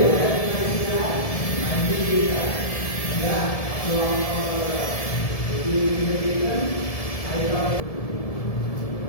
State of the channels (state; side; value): late; right; 1.7 ms